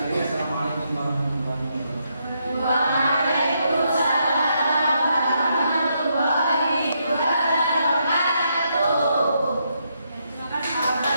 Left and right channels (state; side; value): inverted; both; correlation -0.78